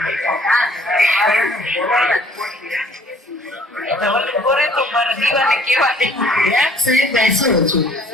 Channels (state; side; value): normal; both; correlation 0.57